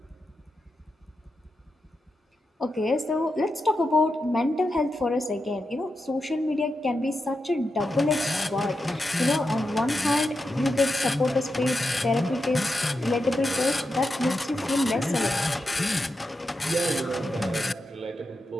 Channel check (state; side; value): normal; both; correlation 0.88